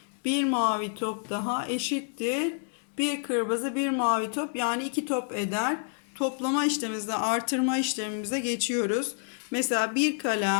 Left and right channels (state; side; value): silent; right; 59 dB below the other